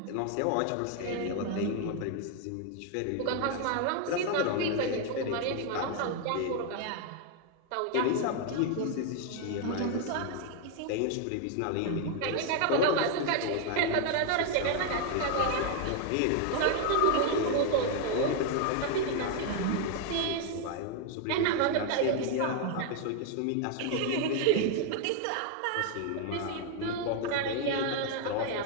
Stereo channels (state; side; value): different; both; correlation 0.00